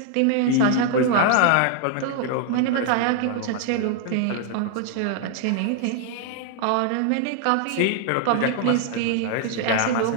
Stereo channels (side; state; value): both; different; correlation 0.00